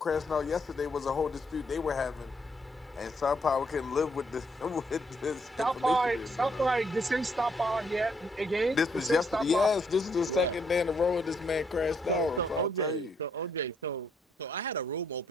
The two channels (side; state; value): both; normal; correlation 0.72